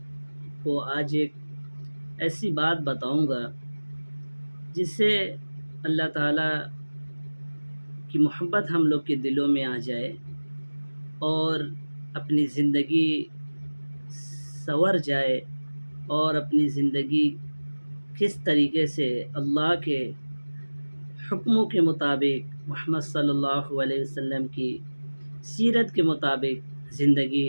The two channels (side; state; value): both; inverted; correlation -1.00